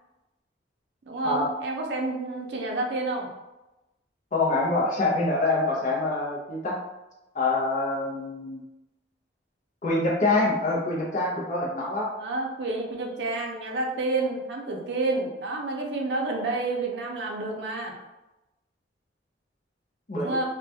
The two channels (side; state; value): both; normal; correlation 0.11